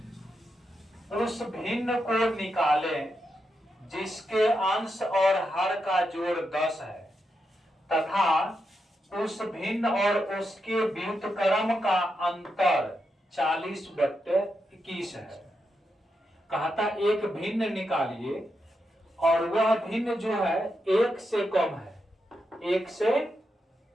उस भिन्न को निकालें जिसके अंश और हर का जोड़ 10 है तथा उस भिन्न और उसके व्युत्क्रम का अंतर 40/21 है। कहता एक भिन्न निकालिए और वह भिन्न जो है एक से कम है, एक से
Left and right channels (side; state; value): both; normal; correlation 0.85